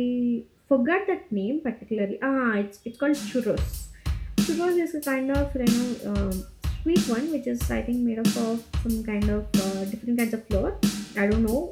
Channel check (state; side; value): identical; both; correlation 1.00